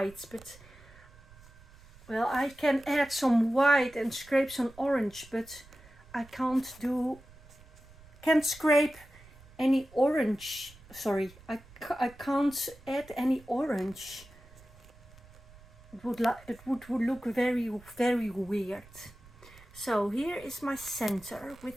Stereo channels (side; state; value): right; noise; rumble, 23 dB below the sound